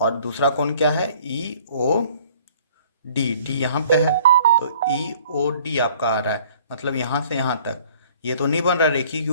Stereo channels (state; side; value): inverted; both; correlation -0.54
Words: और दूसरा कौन क्या है EOD, D यहाँ पे है, तो EOD आपका आ रहा है, मतलब यहाँ से यहाँ तक। ये तो नहीं बन रहा, रेखिक